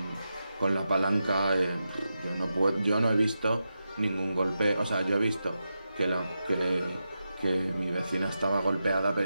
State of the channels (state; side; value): inverted; both; correlation -0.89